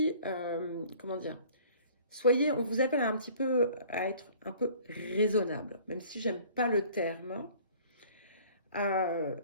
on vous appelle un petit peu à être un peu raisonnable, même si j'aime pas le terme.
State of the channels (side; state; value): both; inverted; correlation -0.51